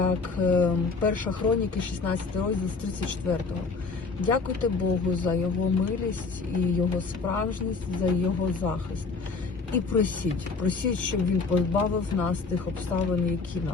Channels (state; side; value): quieter; right; 4.4 dB